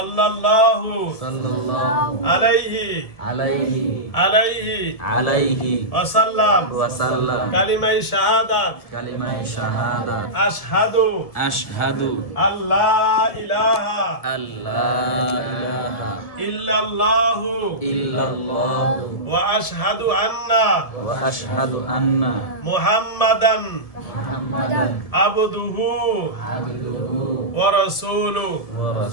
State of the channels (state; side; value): late; right; 1.7 ms